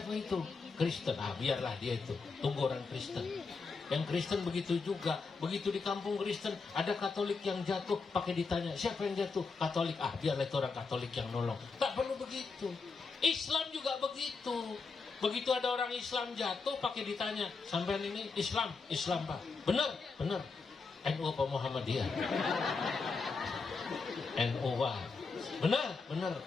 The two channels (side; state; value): right; quieter; 4.5 dB